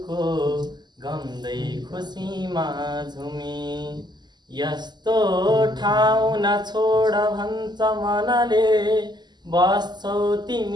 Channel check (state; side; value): late; left; 0.21 ms